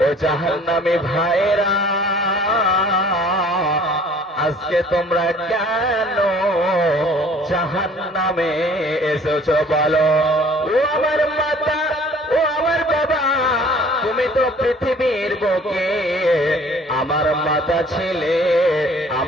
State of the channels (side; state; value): both; normal; correlation 0.53